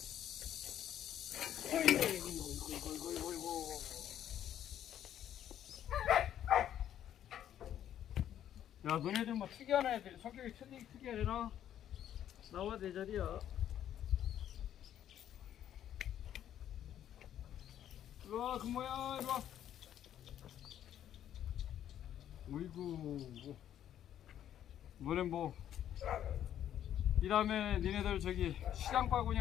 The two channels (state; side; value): quieter; right; 10.7 dB